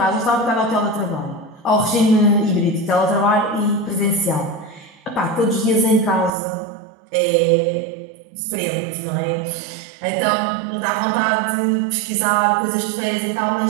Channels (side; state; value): left; drops out; at 6.3 s